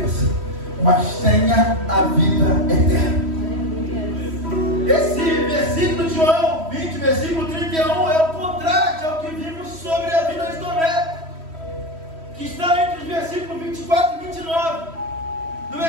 mas tenha a vida eterna. Esse versículo de João 20, versículo 31, é o contraste ao que vimos sobre a vida de Tomé, que está entre os versículos 24 e 29. No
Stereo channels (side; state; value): left; late; 3.1 ms